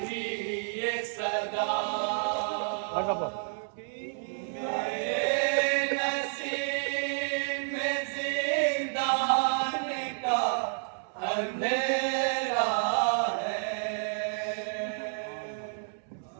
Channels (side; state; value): left; silent; digital silence